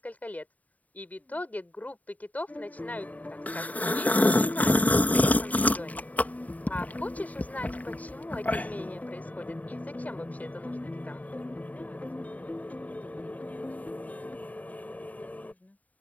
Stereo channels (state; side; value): late; right; 0.073 ms